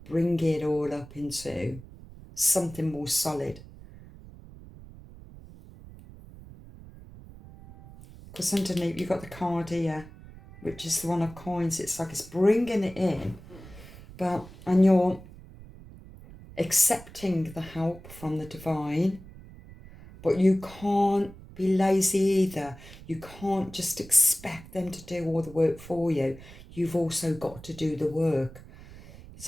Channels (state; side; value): noise; right; rumble, 18 dB below the sound